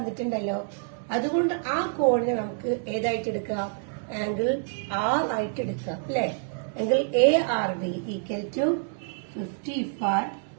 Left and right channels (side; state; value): left; silent; digital silence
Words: അതുകൊണ്ട് ആ കോണിനെ നമുക്ക് ഏതായിട്ട് എടുക്കാം? ആംഗിൾ R ആയിട്ട് എടുക്കാം അല്ലെ. Angle ARB equal to 55